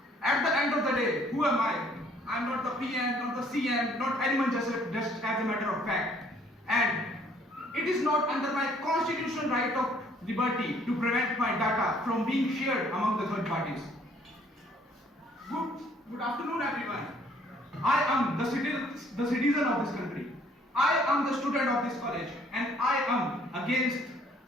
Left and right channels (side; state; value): both; normal; correlation 0.61